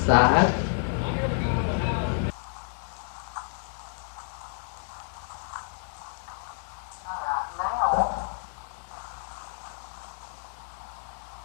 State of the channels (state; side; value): silent; right; 58 dB below the other